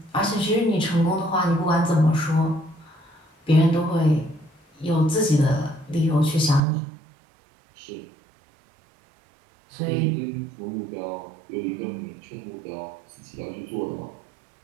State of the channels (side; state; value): left; drops out; at 6.6 s